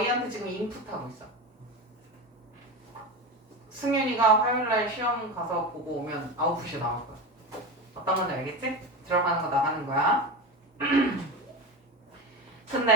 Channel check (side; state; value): both; normal; correlation 0.22